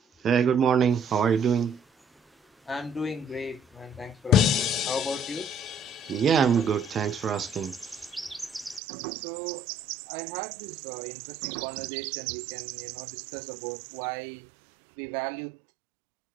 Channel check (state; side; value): drops out; left; at 8.8 s